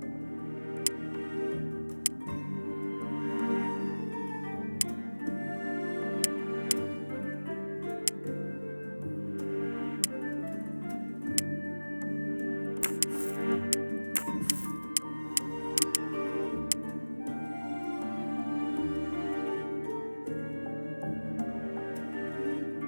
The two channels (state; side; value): inverted; both; correlation -1.00